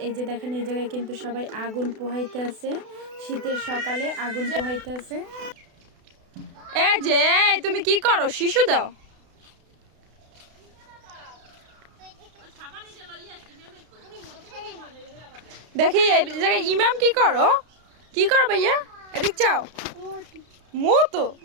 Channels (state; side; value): late; left; 32 ms